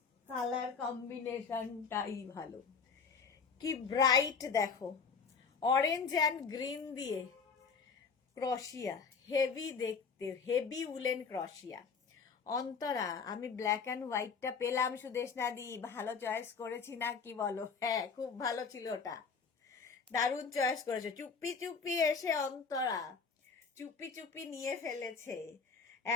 কালার কম্বিনেশনটাই ভালো, কি ব্রাইট দেখো, অরেঞ্জ অ্যান্ড গ্রিন দিয়ে ক্রশিয়া, হেভি দেখতে, হেভি উলেন ক্রশিয়া। অন্তরা, আমি ব্ল্যাক অ্যান্ড হোয়াইটটা পেলাম সুদেশনা দি, ভালো চয়েস করেছি না কি বলো? হ্যাঁ, খুব ভালো ছিল ওটা, দারুণ চয়েস করেছো। চুপি চুপি এসে অন্তরা চুপি চুপি নিয়ে ফেলেছে,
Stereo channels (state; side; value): quieter; right; 5.5 dB